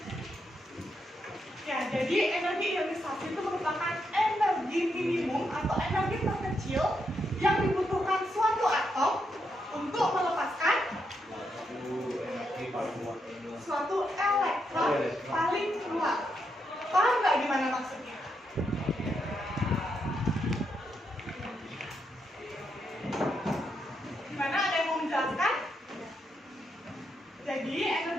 Ya, jadi energi ionisasi itu merupakan energi minimum atau energi terkecil yang dibutuhkan suatu atom untuk melepaskan suatu elektron paling keluar. Paham nggak gimana maksudnya? Gimana? Ada yang mau menjelaskan? Jadi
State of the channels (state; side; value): normal; both; correlation 0.81